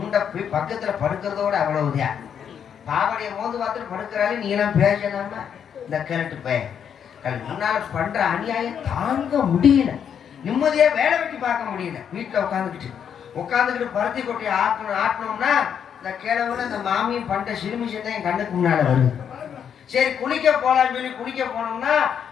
போய் பக்கத்துல படுக்கிறதோட அவ்வளவுதான். பாவடைய மோந்து பார்த்துட்டு படுக்கிறாலே நீ எல்லாம் பேசலாமா? இந்த கிழட்டு பையன் முன்னால பண்ற அநியாயம் தாங்க முடியல. நிம்மதியா வேலை வெட்டி பார்க்க முடியல. வீட்டுல உட்காந்துக்கிட்டு பருத்தி கொட்டியை ஆட்டணும்னா இந்த கிழவுல இந்த மாமியும் பண்ற சிறுமிஷன் தான் என் கண்ணுக்கு முன்னால வருது. சரி குளிக்க போலான்னு சொல்லி குளிக்க போனோம்னா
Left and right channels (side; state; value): right; quieter; 8.1 dB